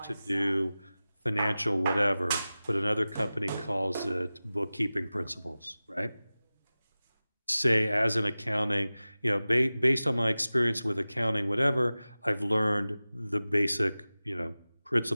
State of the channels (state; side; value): inverted; both; correlation -0.96